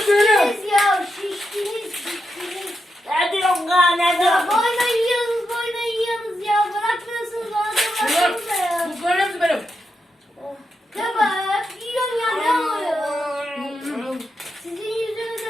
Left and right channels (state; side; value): normal; both; correlation 0.86